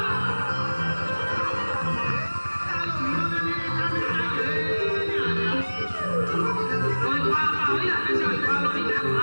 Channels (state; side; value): inverted; both; correlation -1.00